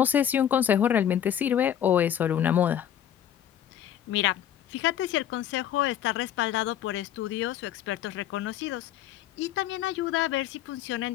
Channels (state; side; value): quieter; right; 10.3 dB